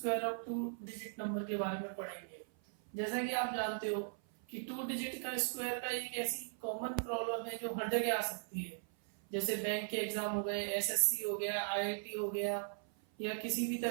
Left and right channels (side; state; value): left; silent; 52 dB below the other